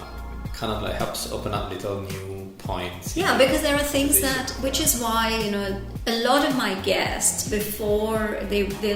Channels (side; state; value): both; identical; correlation 1.00